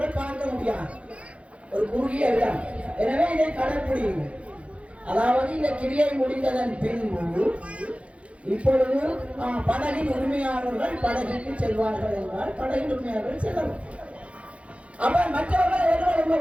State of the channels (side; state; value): left; late; 0.062 ms